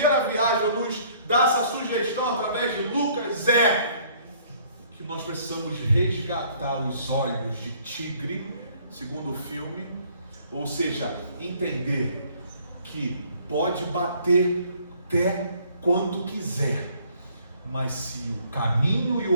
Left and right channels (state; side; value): inverted; both; correlation -0.60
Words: viagem, nos dá essa sugestão através de Lucas, é que nós precisamos resgatar os olhos de tigre, segundo o filme, ou seja, entender que pode bater até quanto quiser, mas se o caminho e